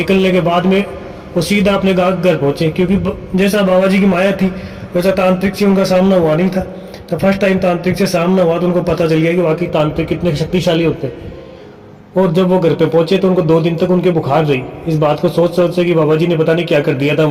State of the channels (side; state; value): both; identical; correlation 1.00